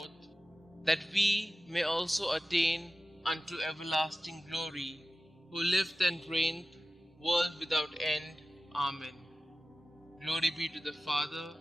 that we may also attain unto everlasting glory, who lived and reigned, world without end. Amen. Glory be to the Father,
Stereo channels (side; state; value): both; normal; correlation 0.95